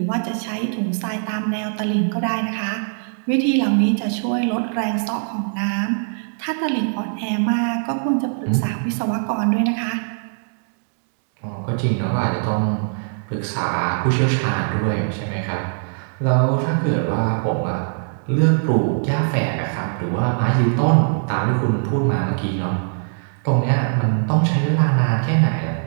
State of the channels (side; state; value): left; silent; digital silence